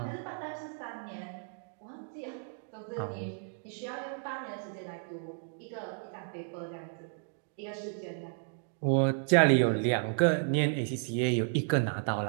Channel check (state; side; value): silent; left; 56 dB below the other